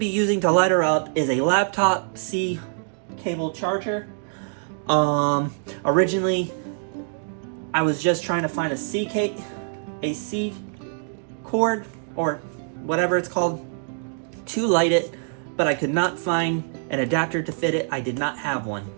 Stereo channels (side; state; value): left; silent; digital silence